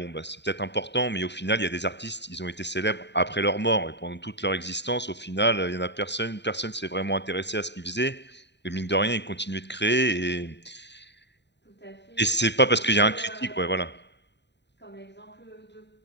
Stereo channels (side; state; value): right; late; 0.50 ms